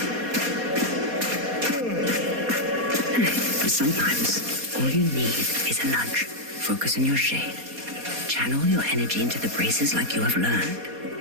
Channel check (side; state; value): left; late; 4.2 ms